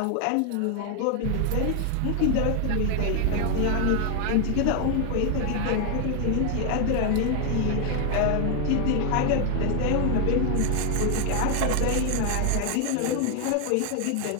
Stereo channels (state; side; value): different; both; correlation 0.01